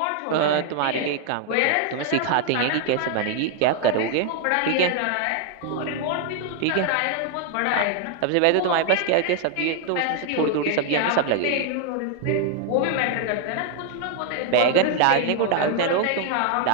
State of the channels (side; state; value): both; different; correlation 0.00